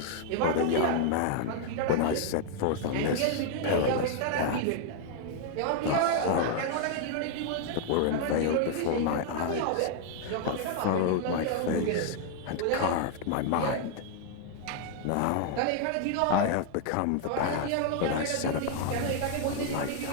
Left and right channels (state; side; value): different; both; correlation 0.00